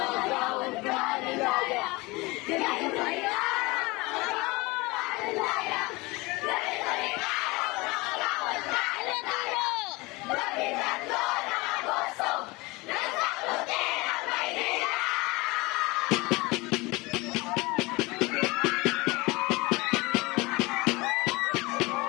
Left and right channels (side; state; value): right; quieter; 23.7 dB